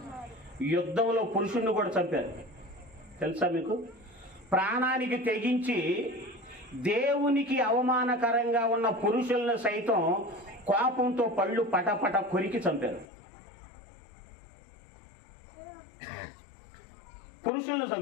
యుద్ధంలో పురుషుణ్ణి కూడా చంపారు తెలుసా మీకు? ప్రాణానికి తెగించి దేవునికి అవమానకరంగా ఉన్న పురుషులను సైతం కోపంతో పళ్ళు పటపట కొరికి చంపారు. పురుషులను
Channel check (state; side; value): drops out; right; at 13.1 s